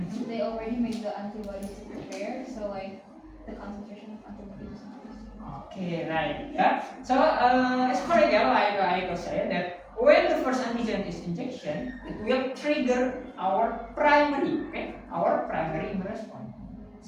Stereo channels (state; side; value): identical; both; correlation 1.00